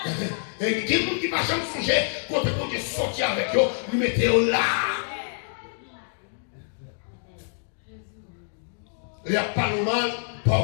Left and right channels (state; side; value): silent; right; digital silence